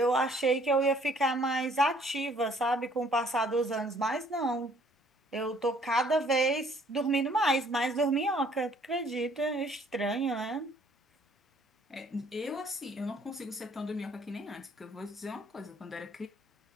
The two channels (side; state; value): both; normal; correlation 0.60